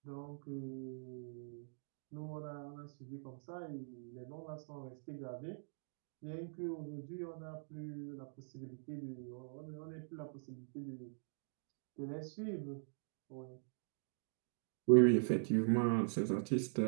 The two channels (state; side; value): silent; left; digital silence